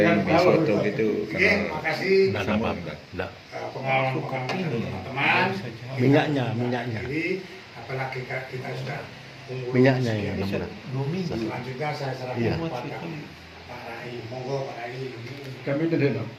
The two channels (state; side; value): identical; both; correlation 1.00